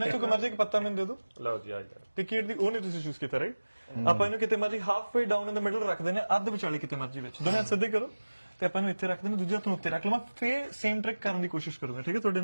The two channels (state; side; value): inverted; both; correlation -1.00